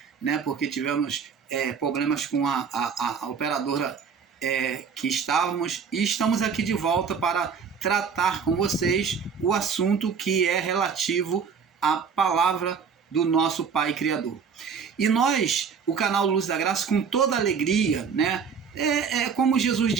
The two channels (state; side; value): quieter; left; 6.2 dB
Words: né? Porque tivemos problemas com a operadora que estávamos. E estamos aqui de volta para tratar com vocês o assunto que é relativo à palavra do nosso Pai Criador. E nós, o canal Luz da Graça, com toda alegria, né? Como Jesus